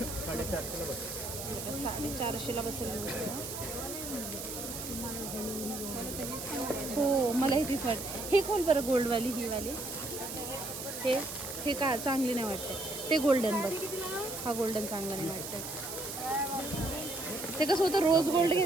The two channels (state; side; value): noise; right; hiss, 7 dB below the sound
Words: बसेल. हो, मला हे तीच वाटते. हे खोल बरं, गोल्डवाली ही वाली. हे का चांगली नाही वाटते. ते गोल्डन बघ, हा गोल्डन चांगला नाही वाटत. ते कसं होतं, रोज गोल्ड